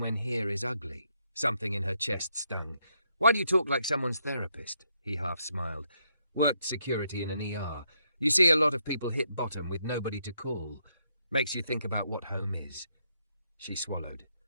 when here is ugly." Something in her chest stung. "Why do you talk like someone's therapist?" He half smiled. "Worked security in an ER. You see a lot of people hit bottom with nobody to call. Makes you think about what home is." She swallowed.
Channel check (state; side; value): inverted; both; correlation -0.77